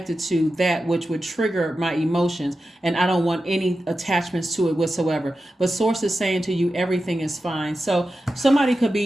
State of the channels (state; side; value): normal; both; correlation 0.92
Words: to that which would trigger my emotions. And I don't want any attachments to it whatsoever. But Source is saying to you, everything is fine. So somebody could